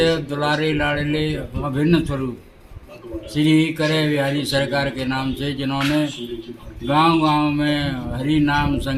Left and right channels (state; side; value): identical; both; correlation 1.00